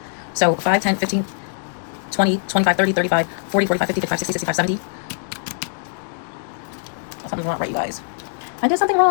So 5, 10, 15, 20, 25, 30, 35, 40, 45, 50, 55, 60, 65, 70. Something's wrong, right, you guys? I did something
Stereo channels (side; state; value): right; silent; digital silence